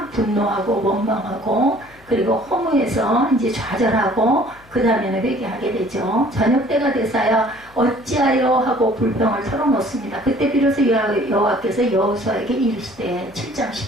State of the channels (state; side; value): noise; left; hum, 27 dB below the sound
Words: 분노하고 원망하고 그리고 허무해서 이제 좌절하고 그 다음에는 회개하게 되죠. 저녁 때가 돼서요 어찌하여 하고 불평을 털어놓습니다. 그때 비로소 여호와께서 여호수아에게 이르시되 7장